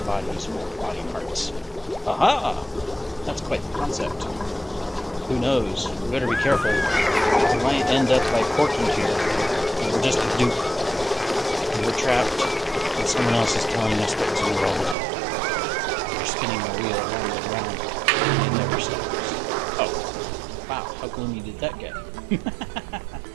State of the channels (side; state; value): left; drops out; at 15.0 s